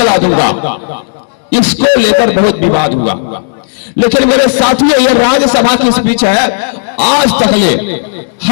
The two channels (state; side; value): silent; right; digital silence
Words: दूंगा। इसको लेकर बहुत विवाद हुआ। लेकिन मेरे साथियों, यह राज्यसभा की स्पीच है। आज तक ले